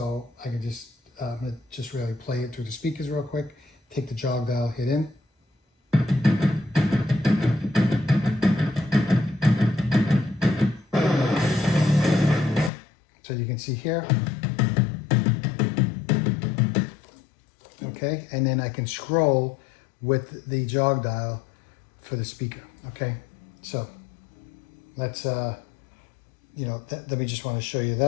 I can just really play it through the speakers real quick. Take the jog dial, hit in. So you can see here. Okay, and then I can scroll with the jog dial for the speaker. Okay, so let's let me just want to show you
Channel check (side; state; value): right; drops out; at 12.7 s